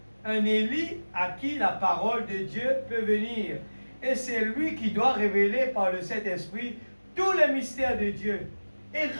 un Élie à qui la parole de Dieu peut venir. Et c'est lui qui doit révéler par le Saint-Esprit tous les mystères de Dieu et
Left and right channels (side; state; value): both; inverted; correlation -1.00